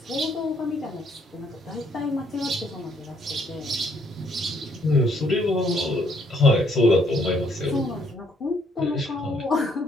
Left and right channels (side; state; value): both; normal; correlation 0.68